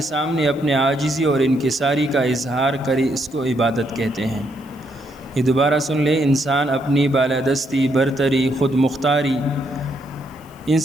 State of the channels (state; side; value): noise; left; hiss, 28 dB below the sound